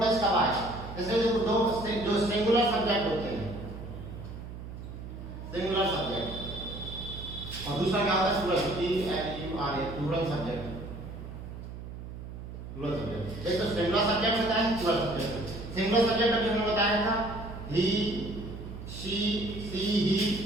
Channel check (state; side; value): noise; right; hum, 10 dB below the sound